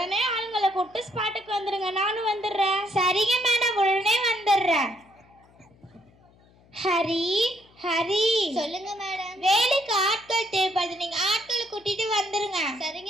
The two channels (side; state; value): left; noise; hum, 29 dB below the sound